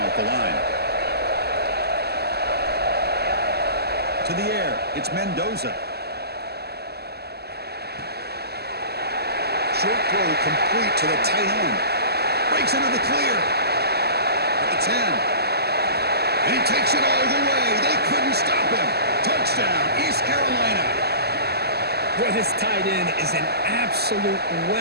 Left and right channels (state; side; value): late; left; 0.47 ms